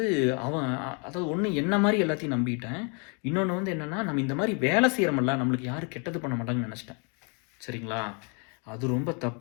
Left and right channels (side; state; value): right; quieter; 35.8 dB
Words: அதாவது ஒண்ணு என்ன மாரி எல்லாத்தையும் நம்பிட்டேன். இன்னொன்னு வந்து என்னன்னா, நம்ம இந்த மாரி வேலை செய்றோம்ல, நம்மளுக்கு யாரும் கெட்டது பண்ண மாட்டாங்கன்னு நெனச்சுட்டேன். சரிங்களா? அது ரொம்ப